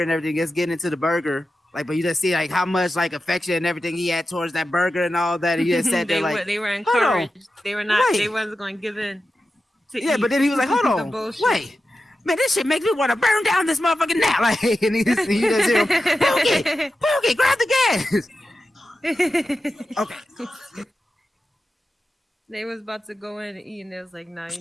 and everything, just getting into the burger. Like, but you just see like how much like affection and everything he had towards that burger and all that. He just said they were encouraged. They were not. Wait. They wasn't going to give in. Eat. But then he was like, "Hold on, wait, man, this shit makes me want to burn down this motherfucking now." Like, and he just hear him, Pookie, grab the gas. Okay. They was about to go in and eat, and they was like, "Nah, you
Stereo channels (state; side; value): normal; both; correlation 0.92